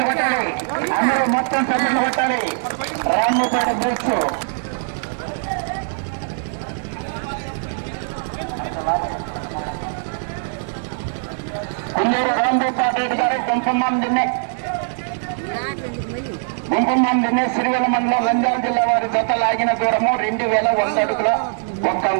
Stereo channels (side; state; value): left; silent; 63 dB below the other